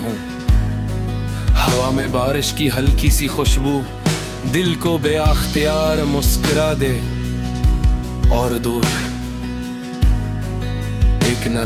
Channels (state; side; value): identical; both; correlation 1.00